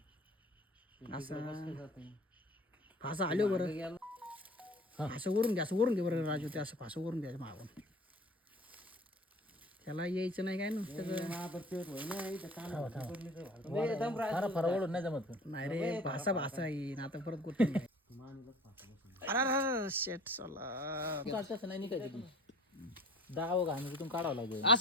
असं फासा आलो बरं असं वरून घे बरं राजू ते असं फासं वरून द्यायचं मागून त्याला यायचं नाही काय ना ओढून नाही जमत नाही रे भासा येईन आता परत गोष्ट अरे शेट चला तसं नाही निघायचं दाव घाण तिथून काढावं लागेल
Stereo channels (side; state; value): both; normal; correlation 0.45